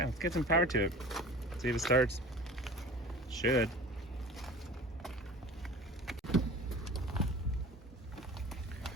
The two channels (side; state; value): both; normal; correlation 0.40